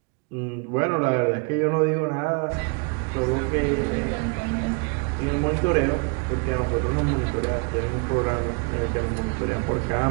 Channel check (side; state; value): left; quieter; 34.4 dB